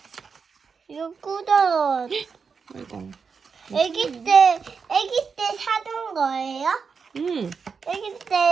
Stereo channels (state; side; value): quieter; left; 5.6 dB